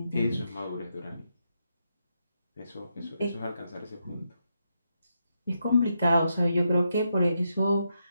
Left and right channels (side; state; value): both; inverted; correlation -0.82